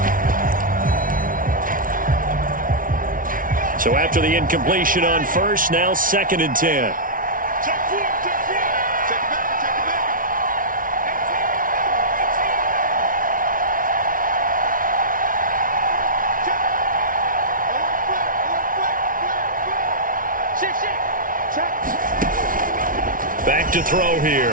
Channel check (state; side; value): late; left; 0.39 ms